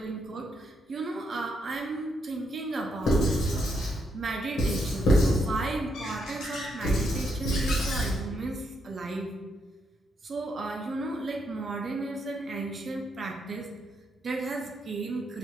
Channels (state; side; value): normal; both; correlation 0.78